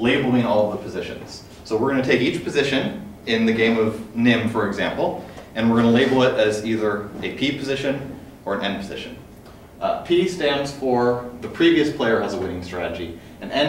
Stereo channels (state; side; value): identical; both; correlation 1.00